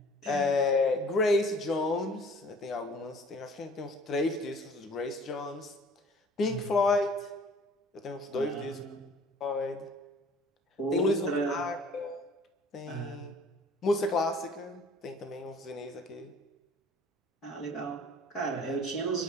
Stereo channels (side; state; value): both; normal; correlation 0.52